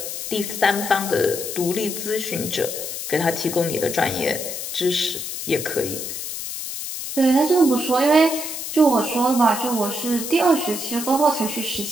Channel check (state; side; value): noise; left; hiss, 6 dB below the sound